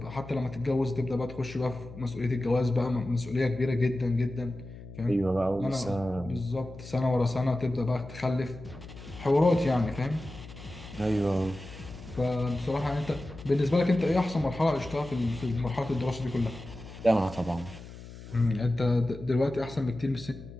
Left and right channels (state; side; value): noise; left; hum, 15 dB below the sound